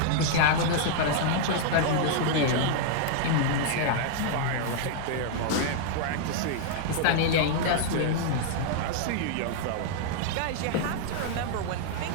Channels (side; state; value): both; different; correlation -0.01